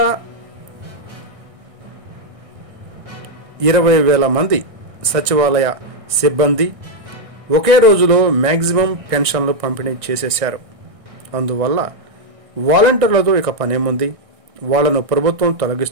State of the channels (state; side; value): late; left; 1.6 ms